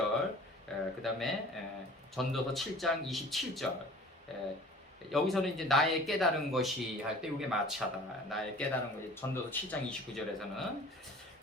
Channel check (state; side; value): normal; both; correlation 0.46